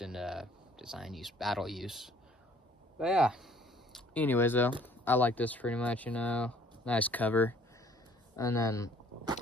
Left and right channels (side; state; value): both; normal; correlation 0.57